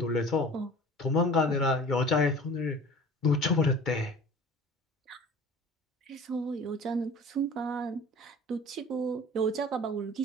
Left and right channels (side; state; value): both; normal; correlation 0.42